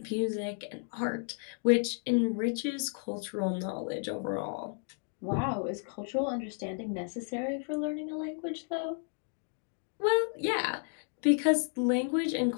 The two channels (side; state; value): right; silent; 56 dB below the other